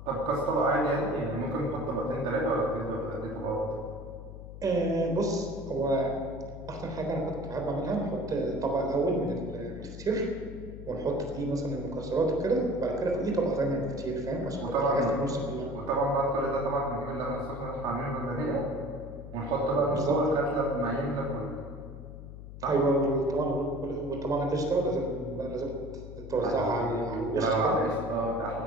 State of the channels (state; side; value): noise; left; hum, 12 dB below the sound